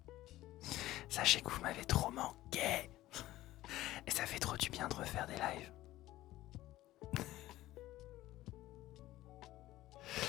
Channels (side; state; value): right; quieter; 15.8 dB